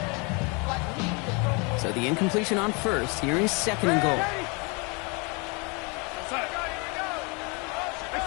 So the incompletion on 1st. Here is 2nd and goal.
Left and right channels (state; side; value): quieter; right; 31.1 dB